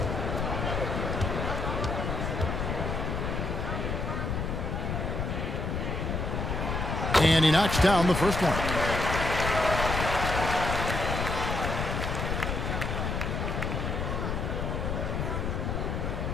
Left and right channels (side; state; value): left; noise; rumble, 1 dB below the sound